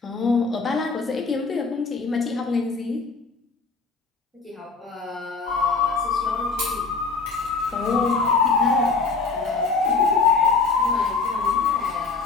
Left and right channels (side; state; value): right; quieter; 4.4 dB